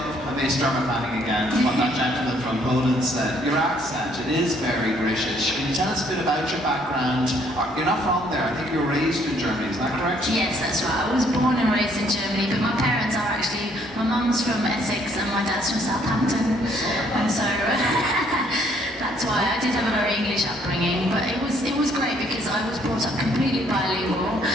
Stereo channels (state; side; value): normal; both; correlation 0.65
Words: I may start my planning again, what that gentleman from Poland said. Your accent, it is very British. Can you tell us a bit about your background? You're not from there, I think you were raised in Germany, is that correct? Yes, that's right. I was born and raised in Germany, but my parents are actually, my mum's from Essex and my dad's from Southampton. And so that's why I did have a very English upbringing, but it was great because I was brought up completely bilingual.